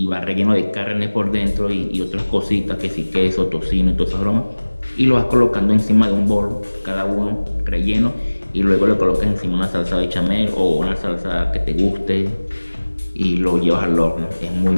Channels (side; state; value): both; inverted; correlation -1.00